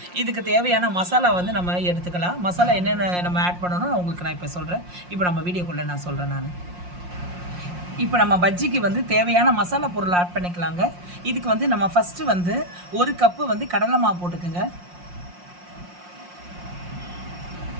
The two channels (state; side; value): late; left; 5.6 ms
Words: இதுக்கு தேவையான மசாலா நம்ம எடுத்துக்கலாம். மசாலா என்னென்ன நம்ம ஆட் பண்ணணும் உங்களுக்கு நான் இப்போ சொல்கிறேன். இப்போ நம்ம வீடியோக்குள்ளே நான் சொல்கிறேன். இப்போ நம்ம பஜ்ஜிக்கு தேவையான மசாலா பொருள் ஆட் பண்ணிக்கலாங்க. இதுக்கு நம்ம ஃபஸ்ட்டு 1 கப்பு கடலை மாவு போட்டுக்குங்க.